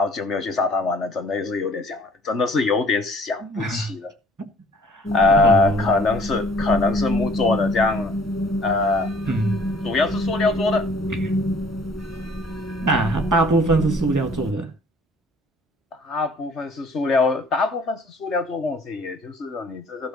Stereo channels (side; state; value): both; normal; correlation 0.55